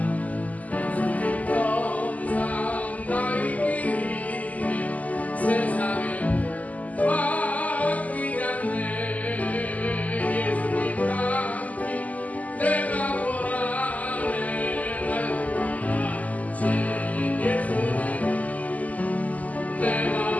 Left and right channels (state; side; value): late; right; 0.075 ms